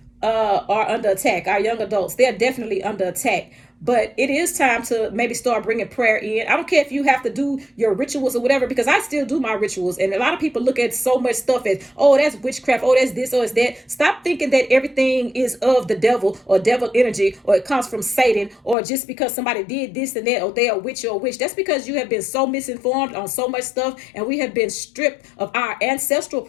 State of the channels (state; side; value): drops out; right; at 18.8 s